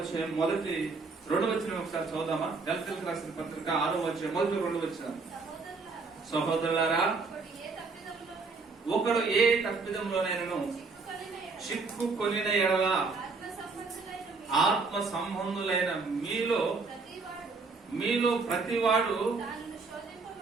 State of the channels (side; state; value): left; quieter; 4.2 dB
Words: మొదటి 2వ వచనం ఒకసారి చదువుదామా? గలతీయులకు రాసిన పత్రిక 6వ అధ్యాయం మొదటి 2వ వచనం. సహోదరులారా, ఒకడు ఏ తప్పిదంలోనైనను చిక్కుకొనిన ఎడల ఆత్మ సంబంధులైన మీలో ప్రతివాడు